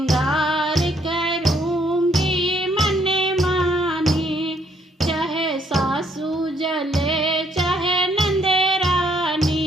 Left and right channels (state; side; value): normal; both; correlation 0.69